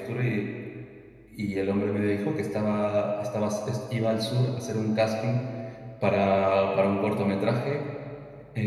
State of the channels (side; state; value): both; identical; correlation 1.00